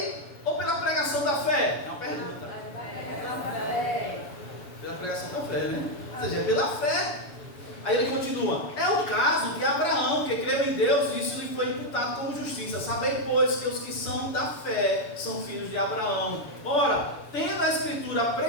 ou pela pregação da fé? É uma pergunta. Pela pregação da fé, né? Ou seja, é pela fé. Aí ele continua: é o caso de Abraão, que creu em Deus, e isso lhe foi imputado como justiça. Sabei, pois, que os que são da fé são filhos de Abraão. Ora, tendo a Escritura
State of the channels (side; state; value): right; late; 7.0 ms